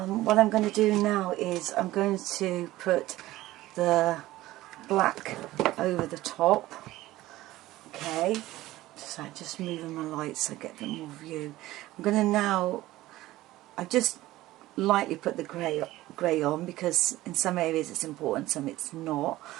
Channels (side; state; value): left; quieter; 16.6 dB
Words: I'm going to do now is I'm going to put the black over the top. Okay, so just moving my lights so I get a bit more view. I'm going to now, I just lightly put the grey on because in some areas it's important, some it's not.